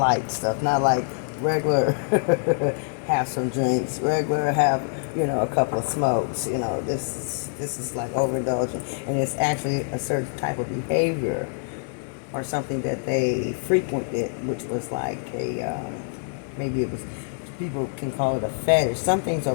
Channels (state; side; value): silent; right; digital silence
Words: stuff, not like regular have some drinks, regular have, you know, a couple of smokes. You know, this is like overindulgent, and it's actually a certain type of behavior or something that they frequented, which was like a maybe it was, people can call it a fetish. Some things